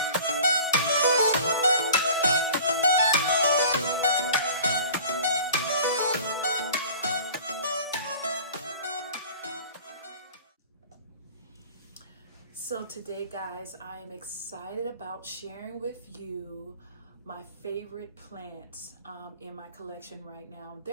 So today guys, I am excited about sharing with you my favorite plants in my collection right now.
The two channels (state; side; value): inverted; both; correlation -0.44